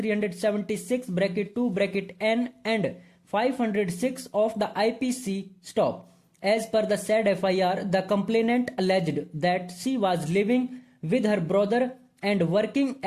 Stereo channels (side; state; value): both; identical; correlation 1.00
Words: bracket 2 bracket N and 506 of the IPC. Stop. As per the said FIR, the complainant alleged that she was living with her brother and working